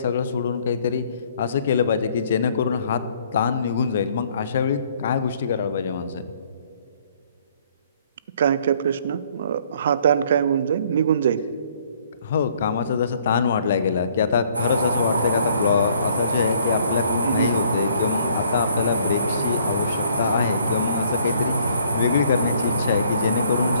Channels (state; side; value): inverted; both; correlation -0.62